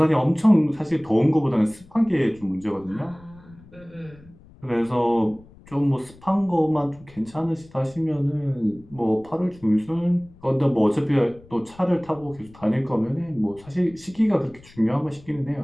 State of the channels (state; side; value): noise; left; rumble, 24 dB below the sound